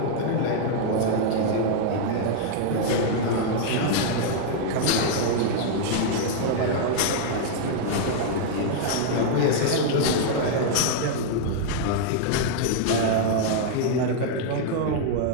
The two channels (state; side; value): different; both; correlation -0.01